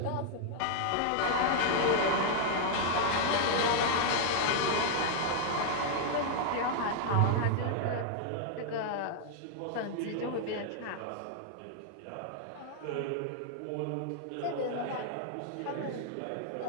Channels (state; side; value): different; both; correlation 0.00